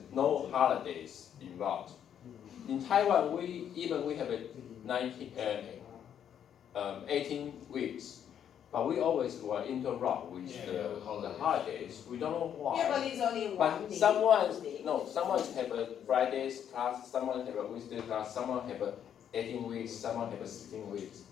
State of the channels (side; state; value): right; quieter; 9.2 dB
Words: no holidays involved. In Taiwan, we have a 18 weeks, but we always will interrupt with the holidays. We don't know why. Yeah, but it's only one But day. someone Day. have a Fridays class, someone have a Wednesday class, someone have a 18 weeks, someone have a 16 weeks,